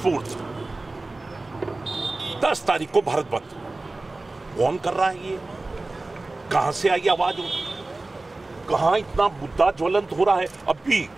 10 तारीख को भारत बंद। कौन कर रहा है ये? कहां से आई आवाज? कहां इतना मुद्दा ज्वलंत हो रहा है?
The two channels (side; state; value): left; quieter; 3.1 dB